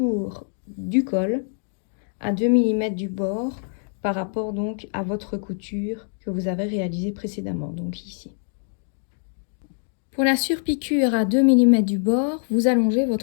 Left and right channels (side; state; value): right; silent; 62 dB below the other